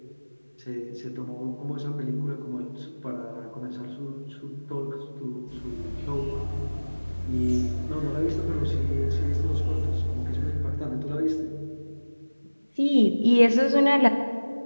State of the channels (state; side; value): inverted; both; correlation -1.00